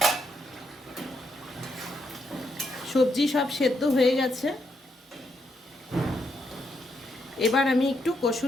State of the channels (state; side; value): normal; both; correlation 0.79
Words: সবজি সব সেদ্ধ হয়ে গেছে। এবার আমি একটু